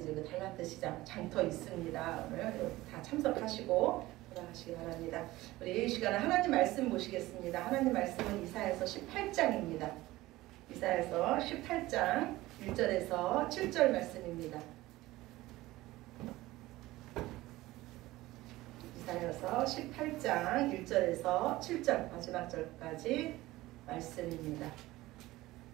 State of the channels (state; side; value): quieter; left; 18.0 dB